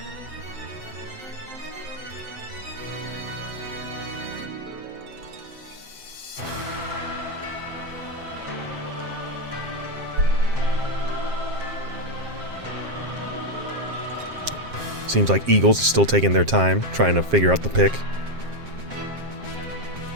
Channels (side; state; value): left; late; 7.5 ms